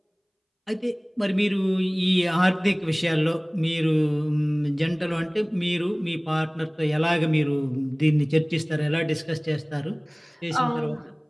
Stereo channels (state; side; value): identical; both; correlation 1.00